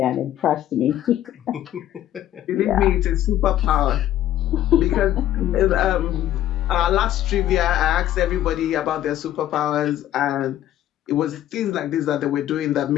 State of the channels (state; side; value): quieter; right; 12.6 dB